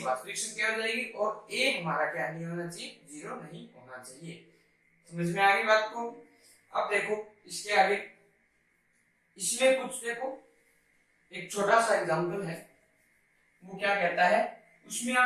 वास्तविक संख्या हो जाएगी, और a हमारा क्या नहीं होना चाहिए, 0 नहीं होना चाहिए। समझ में आ गई बात को। अब देखो इसके आगे, इसमें कुछ देखो एक छोटा सा एग्जांपल है, वो क्या कहता है, उसमें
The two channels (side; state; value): both; identical; correlation 1.00